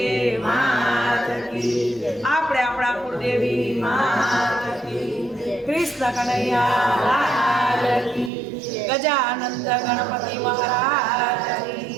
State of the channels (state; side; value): drops out; left; at 8.3 s